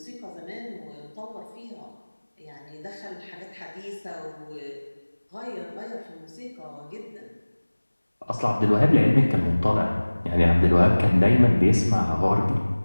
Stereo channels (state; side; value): inverted; both; correlation -1.00